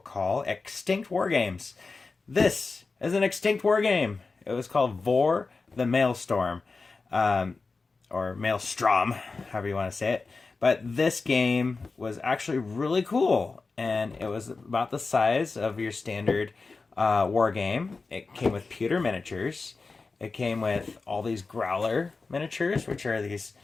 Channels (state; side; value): quieter; right; 4.1 dB